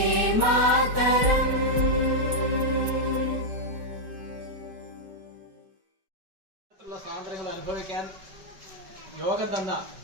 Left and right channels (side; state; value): left; late; 5.2 ms